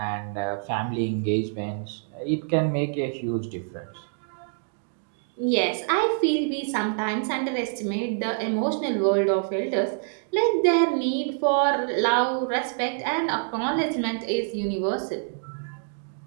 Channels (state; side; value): silent; left; digital silence